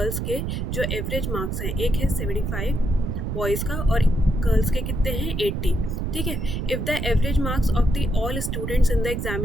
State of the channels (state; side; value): noise; right; rumble, 2 dB below the sound